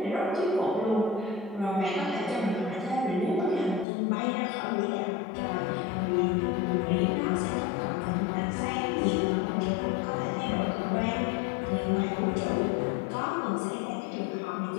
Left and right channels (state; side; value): drops out; right; at 3.9 s